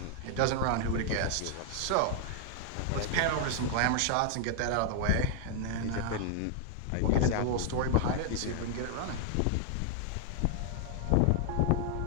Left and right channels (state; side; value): different; both; correlation 0.00